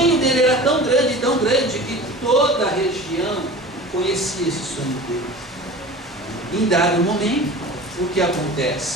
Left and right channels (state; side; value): noise; right; hum, 29 dB below the sound